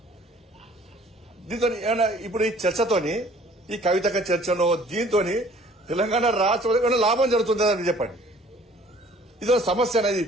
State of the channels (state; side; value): normal; both; correlation 0.54